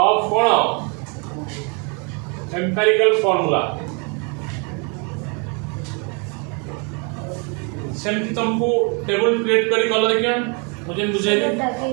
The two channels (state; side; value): quieter; left; 34.4 dB